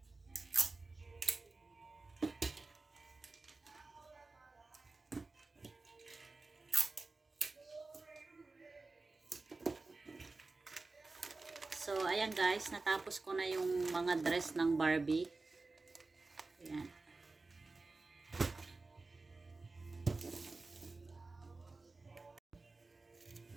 So, ayan guys, natapos ko na yung mga dress ng Barbie. Ayan.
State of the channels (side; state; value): left; quieter; 3.6 dB